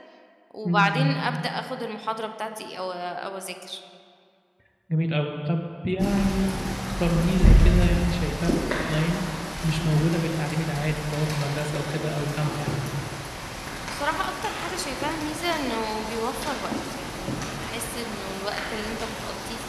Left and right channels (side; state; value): both; identical; correlation 1.00